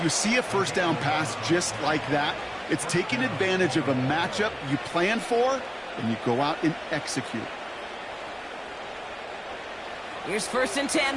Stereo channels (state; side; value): identical; both; correlation 1.00